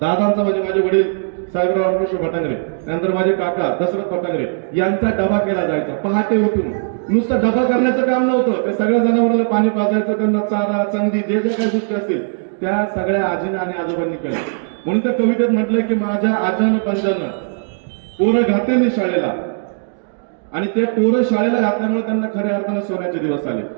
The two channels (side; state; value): left; silent; digital silence